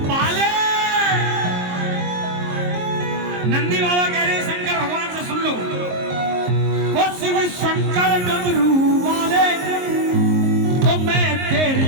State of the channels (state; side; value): late; left; 22 ms